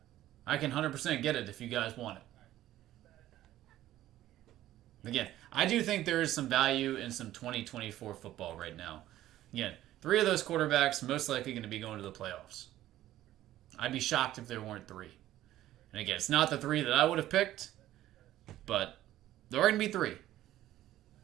I can 100% get it if you guys want it. Again, I do think there is some value in some 2024 football right now. Again, 3 of those quarterbacks most likely going to be going to the playoffs. I'd be shocked if there weren't 3. And again, it's not the 3 that I would have picked, but there are going to be 3.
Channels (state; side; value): quieter; left; 13.9 dB